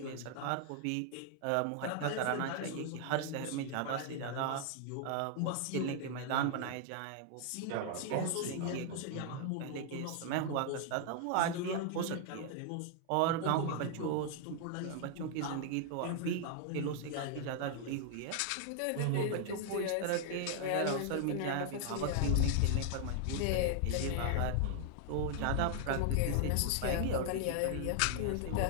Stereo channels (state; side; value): different; both; correlation 0.00